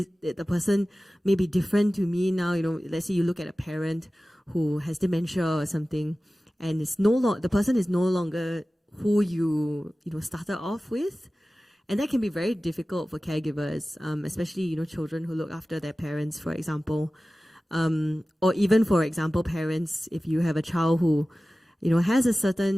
the person may be different to me now? Let's say you look at a parent who has dementia or something, and the person is no longer who you started off with. And that can be very difficult for caregivers, especially, children who look after their parents, for example. Or even, for example, parents, if you have a child who, has a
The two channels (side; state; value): both; normal; correlation 0.96